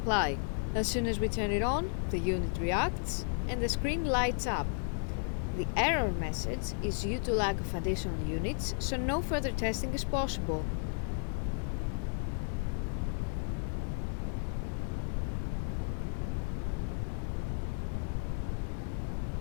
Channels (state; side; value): silent; right; 55 dB below the other